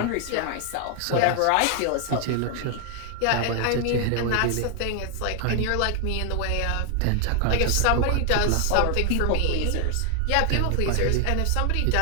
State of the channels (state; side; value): different; both; correlation 0.00